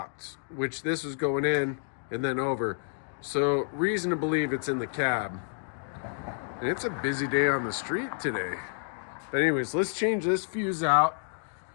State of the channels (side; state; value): right; silent; digital silence